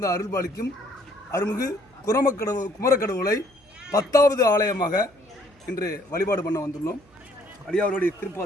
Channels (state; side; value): noise; right; hum, 30 dB below the sound